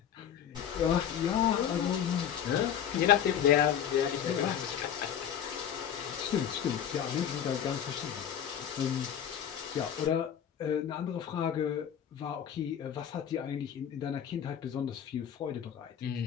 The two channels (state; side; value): quieter; right; 9.1 dB